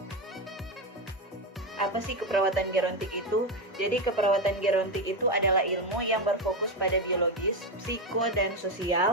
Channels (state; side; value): normal; both; correlation 0.11